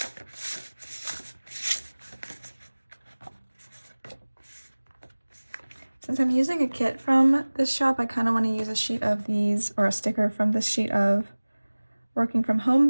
Since I'm using a kit from this shop, I kind of want to use a sheet of these, or a sticker from this sheet of Working From Home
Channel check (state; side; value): inverted; both; correlation -1.00